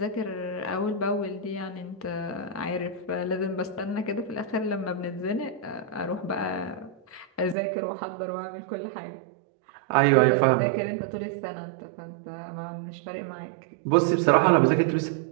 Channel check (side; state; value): left; drops out; at 7.6 s